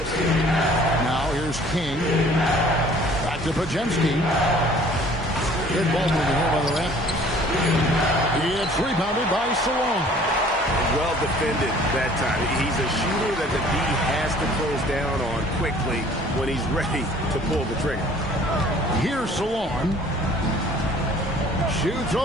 Now here's King. Back to Podziemski. Good ball moving here by the Raptors. It's rebounded by Salon. Well defended that time. He's a shooter that the D has to close down on quickly when he's ready to pull the trigger. Here's Salon. Shoots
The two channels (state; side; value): normal; both; correlation 0.53